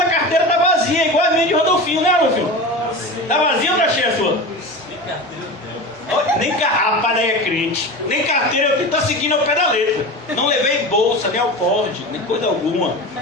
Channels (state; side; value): normal; both; correlation 0.29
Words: a carteira está vazia, igual a minha de Rodolfinho, né, Rodolfinho? Está vazia ou está cheia a sua? Nem rapaz, daí é crente. Nem carteira, eu estou seguindo ao pé da letra. Não levei bolsa, nem alporde, nem coisa alguma.